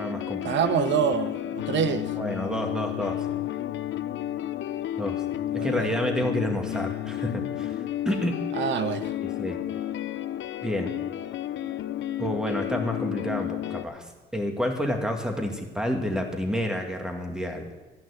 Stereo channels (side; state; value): both; normal; correlation 0.45